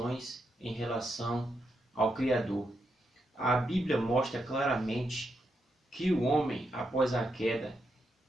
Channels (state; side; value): normal; both; correlation 0.83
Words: em relação ao Criador. A Bíblia mostra claramente que o homem, após a queda,